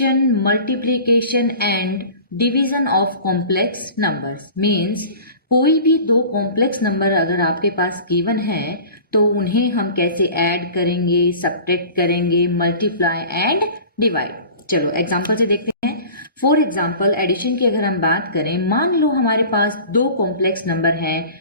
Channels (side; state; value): both; inverted; correlation -0.41